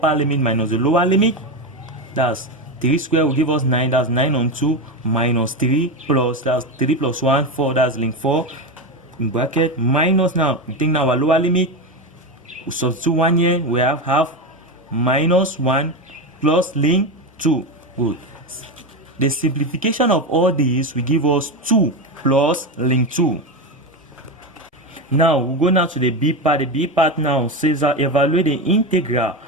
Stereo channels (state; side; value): normal; both; correlation 0.16